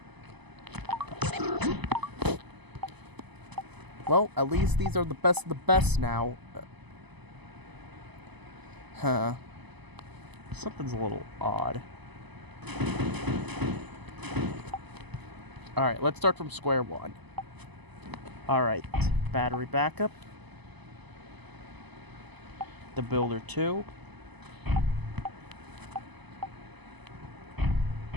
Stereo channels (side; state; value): left; late; 1.0 ms